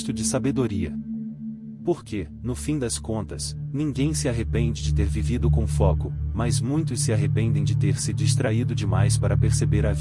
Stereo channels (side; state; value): both; identical; correlation 1.00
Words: de sabedoria. Porque, no fim das contas, ninguém se arrepende de ter vivido com foco, mas muitos se arrependem de ter se distraído demais para perceber a